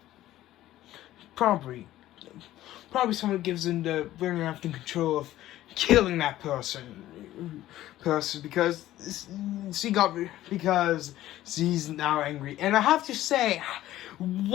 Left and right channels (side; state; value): right; quieter; 14.4 dB